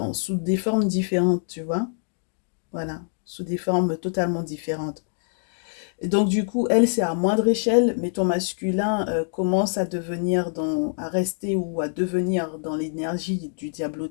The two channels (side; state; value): right; silent; digital silence